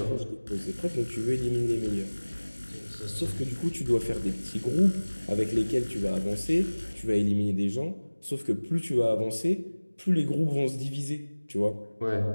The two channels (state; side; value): inverted; both; correlation -1.00